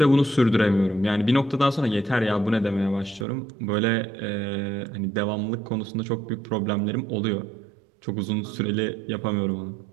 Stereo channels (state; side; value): drops out; left; at 3.2 s